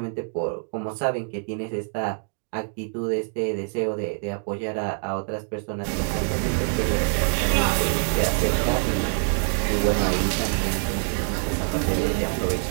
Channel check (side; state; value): left; silent; 62 dB below the other